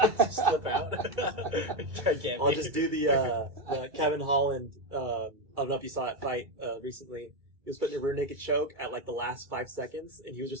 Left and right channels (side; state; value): left; late; 2.3 ms